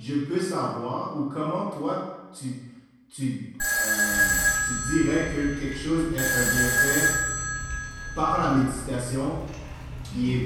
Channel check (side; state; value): both; identical; correlation 1.00